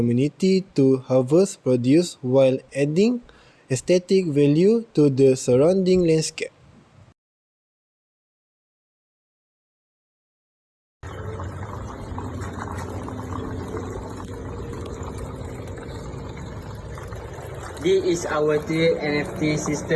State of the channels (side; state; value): both; identical; correlation 1.00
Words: to harvest produce while adding aesthetic value to the surrounding landscape. This is our tiered NFT